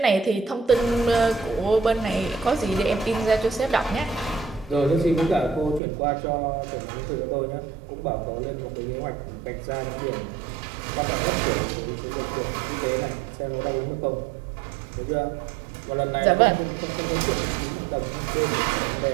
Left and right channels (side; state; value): left; drops out; at 5.8 s